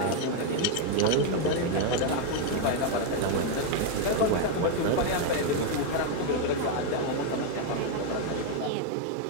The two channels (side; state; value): both; different; correlation 0.01